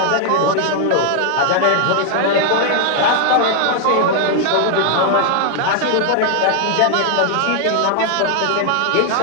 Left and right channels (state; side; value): different; both; correlation 0.00